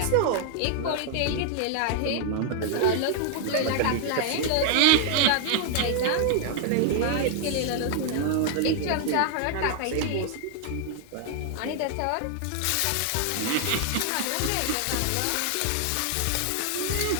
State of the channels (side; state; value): both; different; correlation 0.00